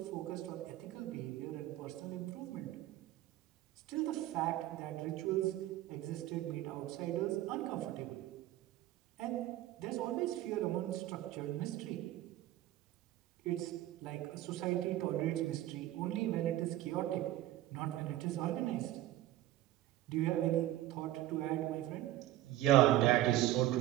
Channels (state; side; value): quieter; left; 14.6 dB